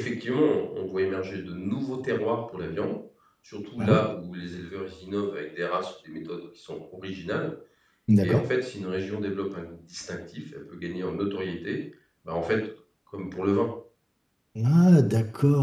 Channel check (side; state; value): both; identical; correlation 1.00